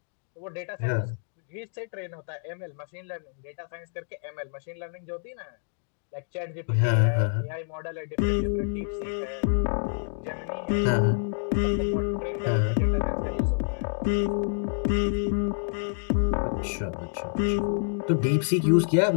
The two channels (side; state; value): right; silent; digital silence